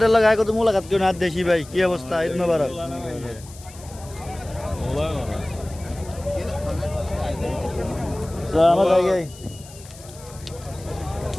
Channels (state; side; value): noise; left; hiss, 20 dB below the sound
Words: লাগায় কত মোলাকাত কেউ না দেশি ভাই, কি অবস্থা? ঈদ মুবারক। আমার জায়গায়